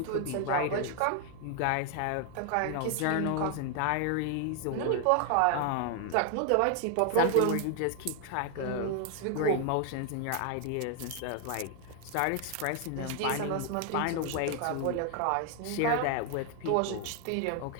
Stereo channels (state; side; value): different; both; correlation 0.00